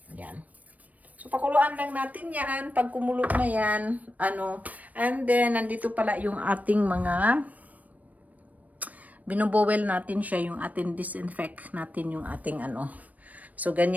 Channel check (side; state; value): left; late; 0.074 ms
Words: Yan. So, pakuluan lang natin yan. Pag kumulo na yan, and then, nandito pala yung ating mga binubowel natin siya, yung ating disinfect natin yung ating So,